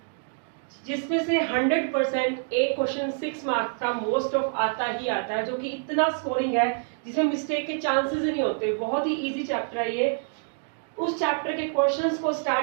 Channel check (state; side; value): silent; left; digital silence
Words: जिसमें से 100% एक क्वेश्चन 6 मार्क्स का मोस्ट ऑफ आता ही आता है, जो कि इतना स्कोरिंग है जिसमें मिस्टेक के चांसेस ही नहीं होते। बहुत ही इजी चैप्टर है ये। उस चैप्टर के क्वेश्चंस को